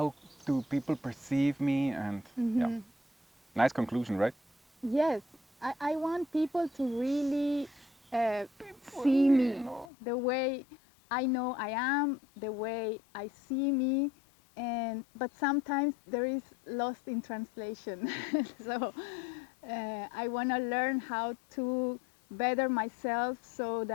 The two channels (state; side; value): drops out; right; at 9.9 s